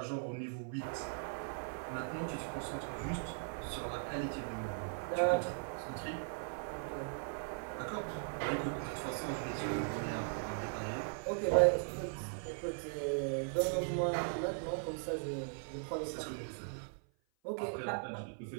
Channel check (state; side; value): silent; left; 52 dB below the other